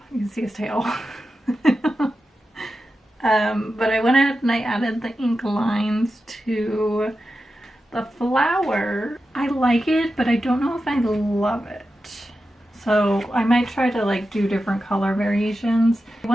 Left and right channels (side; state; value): both; normal; correlation 0.91